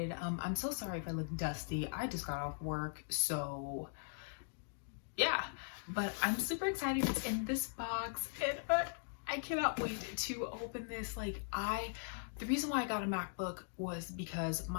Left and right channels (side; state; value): right; silent; digital silence